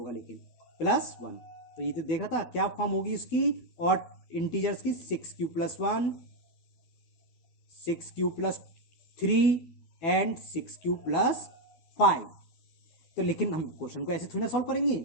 लेकिन +1, तो ये तो देखा था क्या फॉर्म होगी इसकी और इंटीजर्स की 6q + 1 6q + 3 एंड 6q + 5। तो लेकिन हम क्वेश्चन को ऐसे थोड़ा सॉल्व करेंगे,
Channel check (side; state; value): right; late; 12 ms